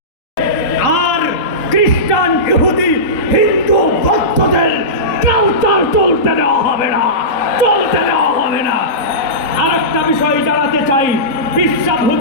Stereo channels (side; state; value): right; late; 3.8 ms